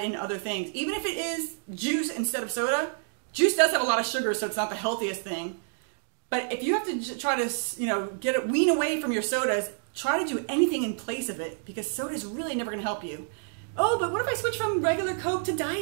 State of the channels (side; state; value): left; silent; digital silence